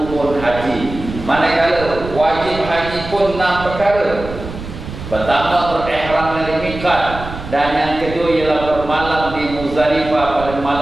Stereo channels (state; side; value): noise; right; rumble, 11 dB below the sound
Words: haji. Manakala wajib haji pun 6 perkara. Pertama, berihram dari miqat, dan yang kedua ialah bermalam di Muzdalifah pada